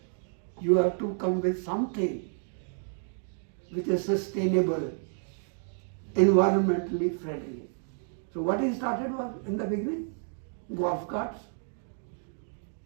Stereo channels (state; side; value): silent; left; 58 dB below the other